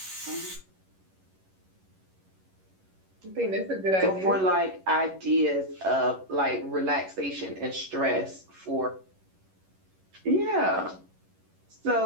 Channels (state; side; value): late; left; 11 ms